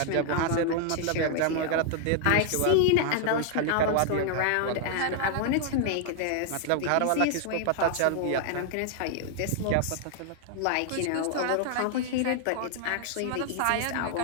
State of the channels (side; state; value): both; different; correlation 0.00